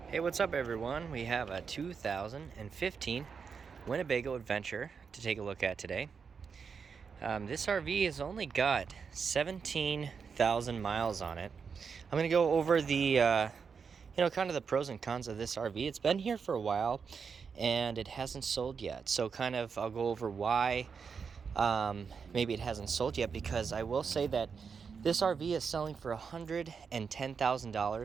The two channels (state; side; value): quieter; left; 5.9 dB